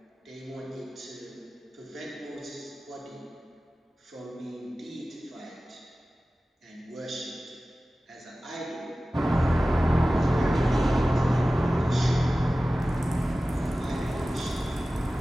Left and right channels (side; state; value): both; normal; correlation 0.96